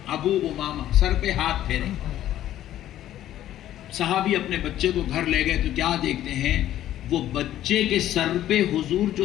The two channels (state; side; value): quieter; right; 12.6 dB